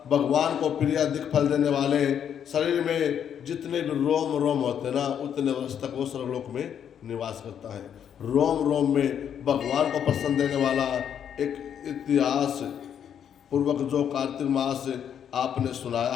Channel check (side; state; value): right; quieter; 8.7 dB